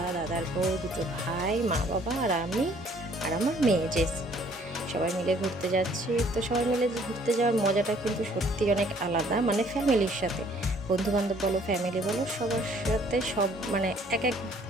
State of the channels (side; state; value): both; normal; correlation 0.60